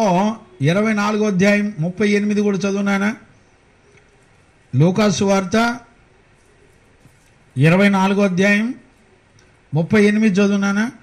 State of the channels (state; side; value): identical; both; correlation 1.00